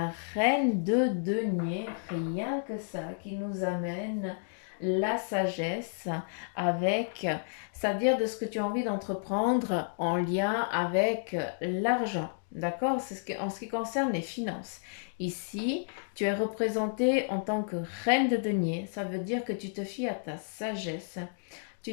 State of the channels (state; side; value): silent; right; digital silence